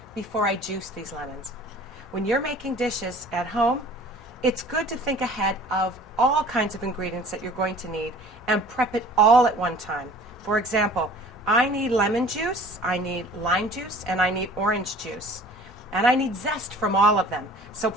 before I juice these lemons. When you're making dishes at home, it's good to think ahead of all kinds of ingredients that you're going to need and prep it all at one time. For example, I need lemon juice, I need lime juice, and I need orange juice. And I need zest from all of them. So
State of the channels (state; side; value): normal; both; correlation 0.47